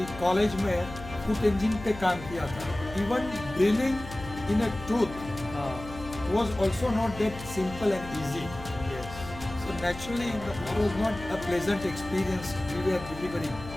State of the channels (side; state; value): left; noise; hum, 13 dB below the sound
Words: कॉलेज में फुट इंजन पे काम किया था। Even drilling in a tooth was also not that simple and easy. So naturally it was not a pleasant experience we were delivering.